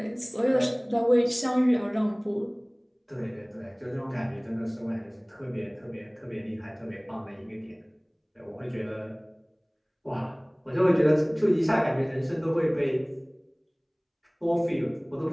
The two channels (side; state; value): both; identical; correlation 1.00